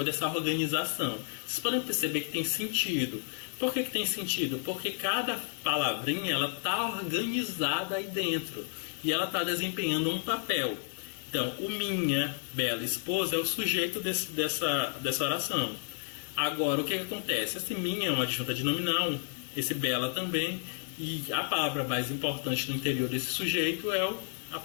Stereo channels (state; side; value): silent; right; 57 dB below the other